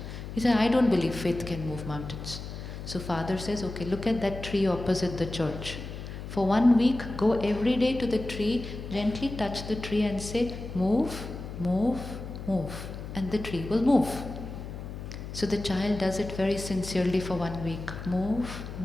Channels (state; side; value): noise; left; hum, 9 dB below the sound